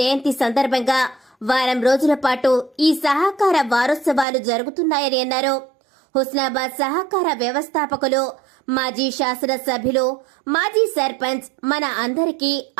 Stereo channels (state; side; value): drops out; left; at 4.2 s